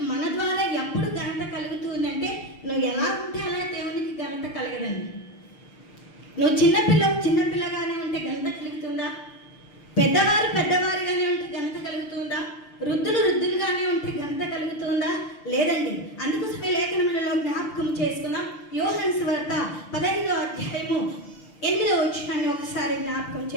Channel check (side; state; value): right; late; 6.2 ms